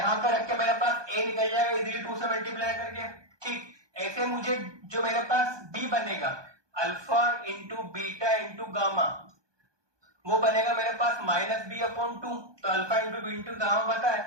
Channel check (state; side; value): late; left; 1.2 ms